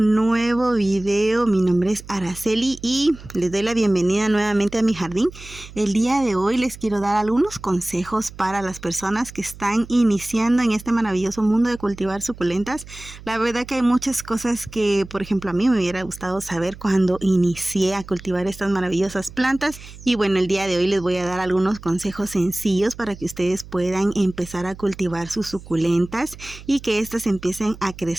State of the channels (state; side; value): noise; right; hum, 17 dB below the sound